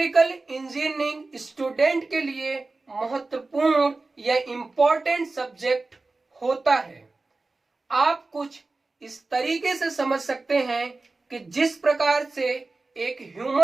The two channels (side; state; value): left; quieter; 3.5 dB